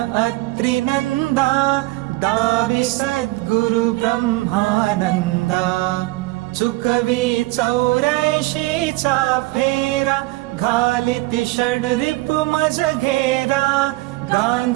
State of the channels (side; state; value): left; quieter; 20.6 dB